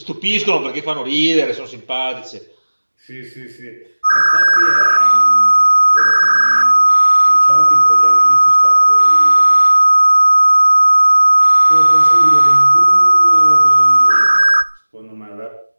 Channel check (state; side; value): inverted; both; correlation -1.00